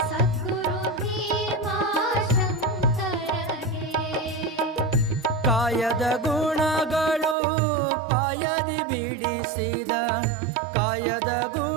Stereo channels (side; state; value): left; drops out; at 7.4 s